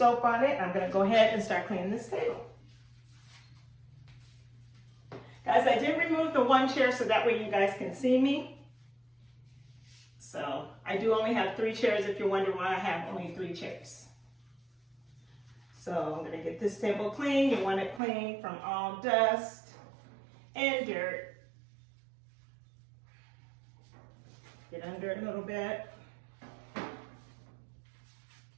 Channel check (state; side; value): drops out; left; at 18.0 s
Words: on it. I'm gonna go ahead and start cleaning this table. Guys, I did remove the one chair so that way you guys can see me. So I do only have 3 chairs if you're wondering why I have only 3 chairs. So I'm gonna get this table clean. You want it clean from all dust and dirt. Get under it a little bit.